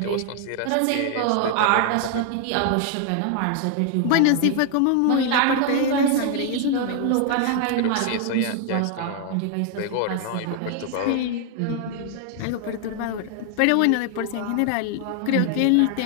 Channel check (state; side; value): different; both; correlation 0.00